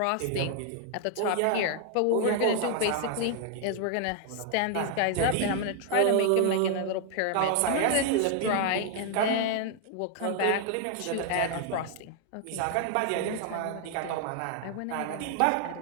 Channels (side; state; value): both; different; correlation 0.00